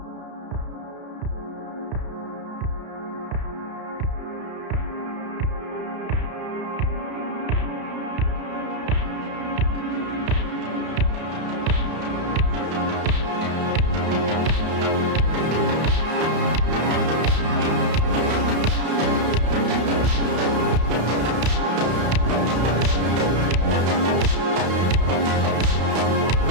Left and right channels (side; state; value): left; late; 32 ms